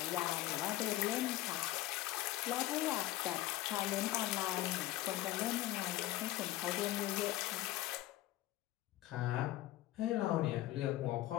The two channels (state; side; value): quieter; right; 15.9 dB